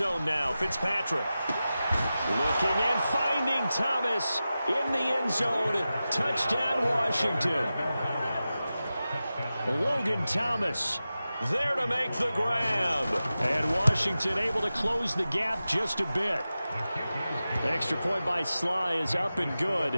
now, Fitzpatrick. Looking and finding Thomas in the end zone. Touchdown, Washington. Logan Thomas there to make the grab. And Washington able to close the gap just a bit. The extra point by Sly is up and good.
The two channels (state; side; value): inverted; both; correlation -0.94